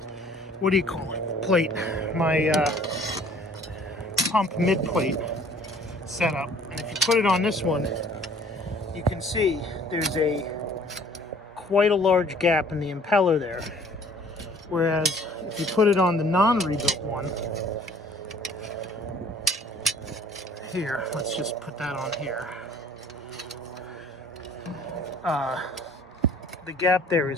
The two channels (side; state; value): both; normal; correlation 0.54